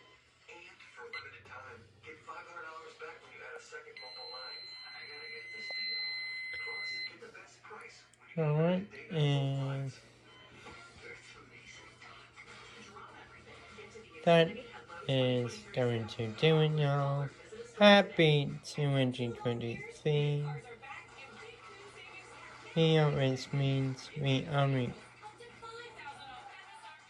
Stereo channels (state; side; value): identical; both; correlation 1.00